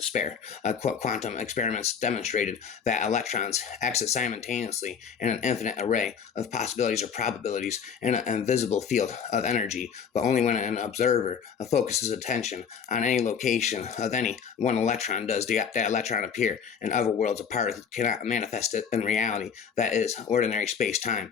spare. Quantum experiments demonstrated that electrons exit simultaneously in an infinite array of possibilities or probabilities in an invisible field of energy, but only when an observer focuses attention on any location of any one electron does that electron appear. In other worlds, a particle cannot manifest it in reality. That is ordinary space-time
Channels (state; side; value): quieter; right; 7.0 dB